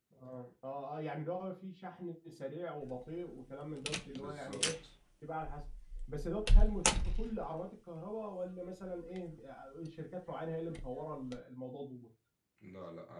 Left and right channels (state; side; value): identical; both; correlation 1.00